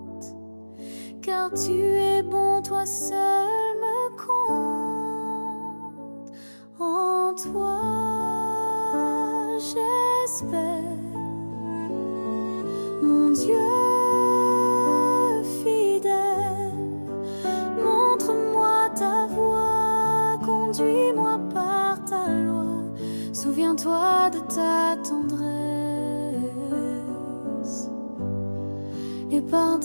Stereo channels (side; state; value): both; inverted; correlation -1.00